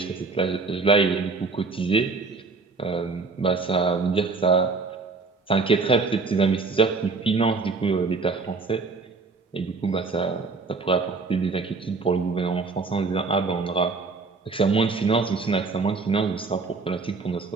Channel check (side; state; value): left; quieter; 4.2 dB